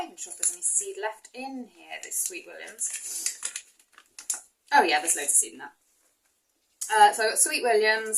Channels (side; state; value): both; identical; correlation 1.00